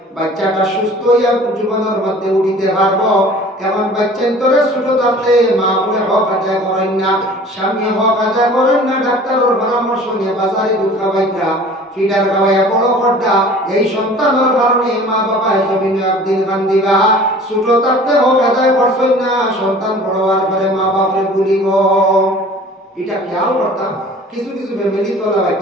বাচ্চাটা সুস্থ হইয়া জীবনের মধ্যে উঠিতে পারবো এমন বাচ্চা তোরে ছোট থাকতে মা বলে হক আদায় করেন না স্বামী হক আদায় করেন না ডাক্তারের পরামর্শ নিয়ে বাজারে দুধ খাওয়াইতা ফিডার খাওয়াইয়া বড় করতা এই সন্তানের কারণে মা বাবা জমিনে একদিন কান্দিবা ছোট থাকতে হক আদায় করছেন না সন্তান বড় হওয়ার পরে মা বাপরে ভুলিব এটা খেয়াল করতাম কিছু কিছু ফ্যামিলি তোলা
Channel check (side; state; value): both; normal; correlation 0.46